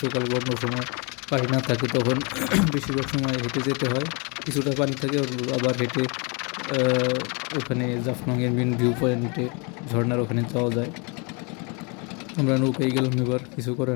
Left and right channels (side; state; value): right; quieter; 31.9 dB